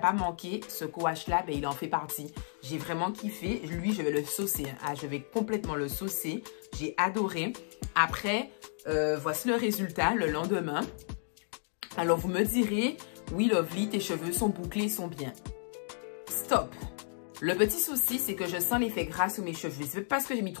manqué, ce co-wash là, ben, il en fait partie. J'ai vraiment kiffé. Lui, je vais le saucer. Ah, je vais complètement le saucer. J'ai adoré. Après, voici le résultat le lendemain. Alors, vous me direz, oui, Lovely, tes cheveux sont bouclés, sont bien. Stop. Le petit souci, c'est que je sens l'effet gras sur mes cheveux. C'est pas parce que j'ai mis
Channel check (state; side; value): silent; right; 56 dB below the other